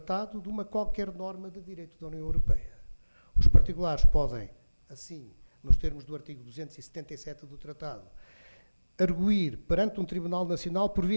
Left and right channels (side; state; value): both; inverted; correlation -1.00